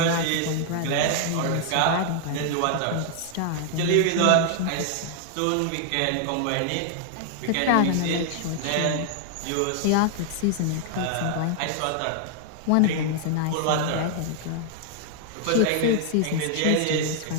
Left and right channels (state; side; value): different; both; correlation 0.00